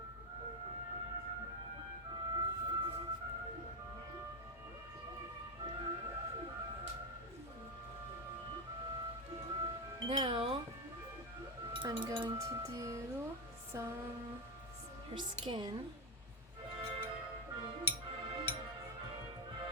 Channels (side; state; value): both; normal; correlation 0.09